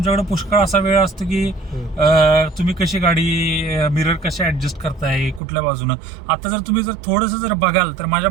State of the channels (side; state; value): left; drops out; at 5.4 s